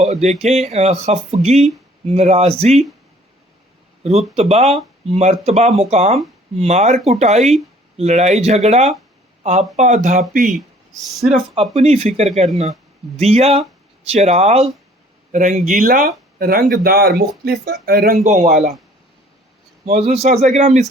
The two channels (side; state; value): both; normal; correlation 0.56